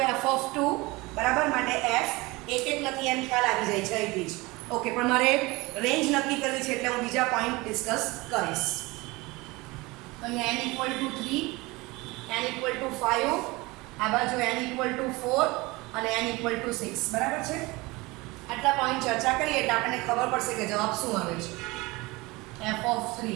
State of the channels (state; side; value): quieter; left; 22.8 dB